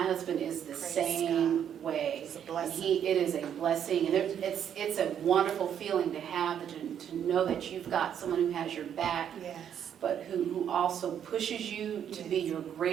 husband is the Praise same way. It's a And blessing. it is a blessing, and it's a wonderful feeling to have, to know that you've got someone who has your back, Yes. but who also pushes you to be your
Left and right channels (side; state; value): left; quieter; 9.1 dB